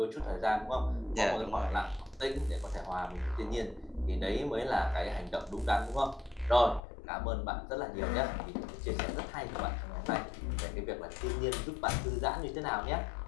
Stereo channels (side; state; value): right; drops out; at 6.8 s